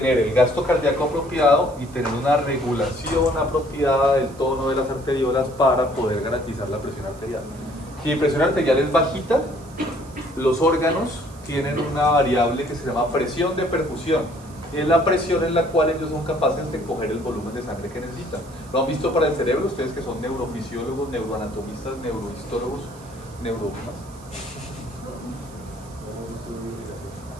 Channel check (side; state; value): right; noise; hiss, 24 dB below the sound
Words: el gasto cardíaco apropiado y tener una regulación apropiada del tono de las arteriolas para poder garantizar la presión arterial. Si mi presión arterial es bajita, los órganos tienen una variable que se llama presión de perfusión. Y es la presión en la cual ellos son capaces de coger el volumen de sangre que necesitan. ¿Lo han visto para el cerebro? Ustedes que son neurofisiólogos, neuroanatomistas, neurohistólogos, ¿no